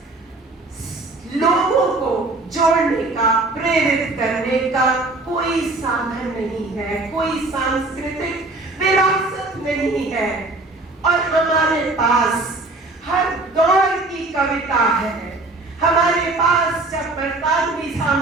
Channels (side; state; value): left; quieter; 3.1 dB